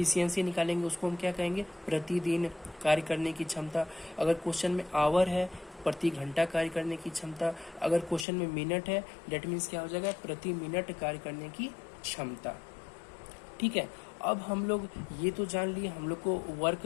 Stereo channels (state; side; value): drops out; right; at 8.2 s